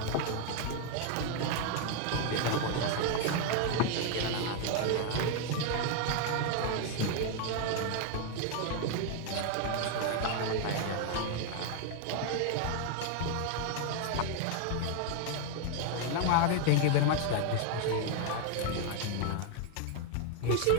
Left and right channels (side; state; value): both; different; correlation 0.00